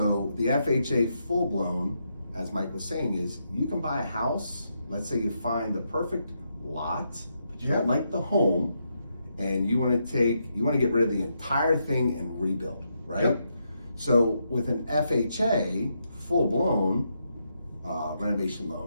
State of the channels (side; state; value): both; inverted; correlation -0.81